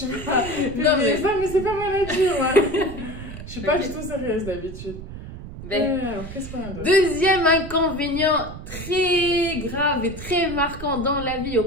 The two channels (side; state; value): right; noise; rumble, 11 dB below the sound